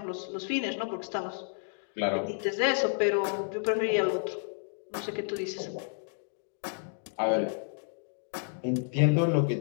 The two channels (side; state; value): right; silent; 57 dB below the other